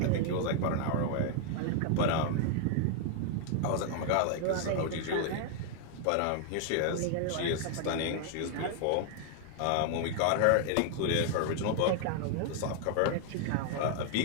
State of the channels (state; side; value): different; both; correlation 0.00